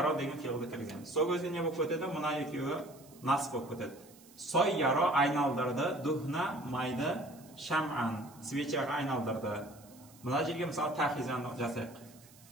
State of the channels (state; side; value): noise; right; hiss, 24 dB below the sound